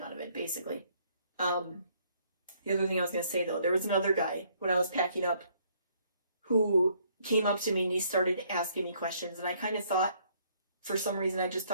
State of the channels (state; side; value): inverted; both; correlation -0.66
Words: of it, basically. The other thing I was going to say, though, there was another guy, when I was packing up, who came up to me and he started asking me questions, and I kind of thought, for some reason, I just